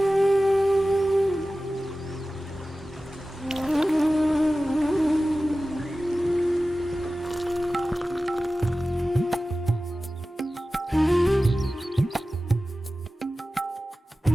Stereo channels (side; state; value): both; normal; correlation 0.96